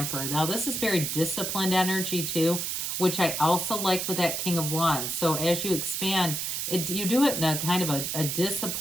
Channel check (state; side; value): noise; right; hiss, 2 dB below the sound